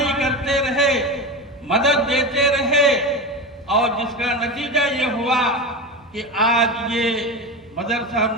کرتے رہے، مدد دیتے رہے، اور جس کا نتیجہ یہ ہوا کہ آج یہ مدرسہ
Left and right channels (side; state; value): both; normal; correlation 0.23